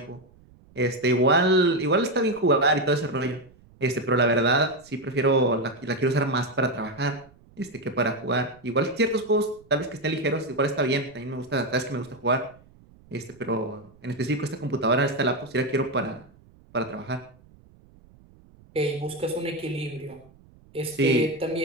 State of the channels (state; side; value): noise; right; rumble, 27 dB below the sound